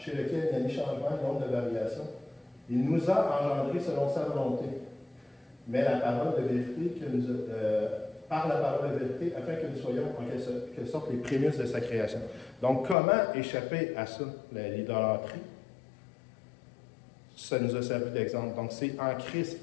lequel il n'y a ni changement, ni honte de variation. Il nous a engendrés selon sa volonté, mais la parole de vérité par la parole de vérité, afin que nous soyons en quelque sorte les prémices de sa création. Donc, comment échapper à ça, l'idolâtrie? Ça nous a servi d'exemple. Donc, c'est en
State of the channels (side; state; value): right; drops out; at 13.0 s